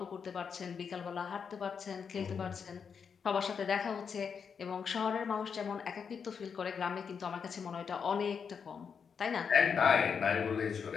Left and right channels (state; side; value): quieter; right; 6.4 dB